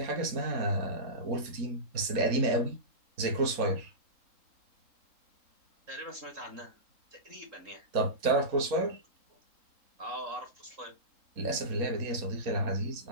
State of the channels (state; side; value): late; left; 3.8 ms